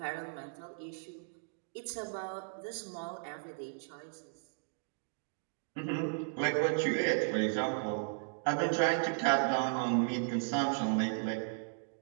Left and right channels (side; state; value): left; silent; digital silence